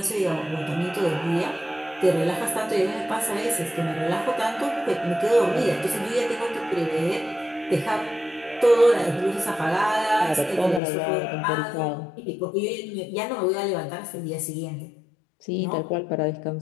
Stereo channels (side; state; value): right; drops out; at 10.8 s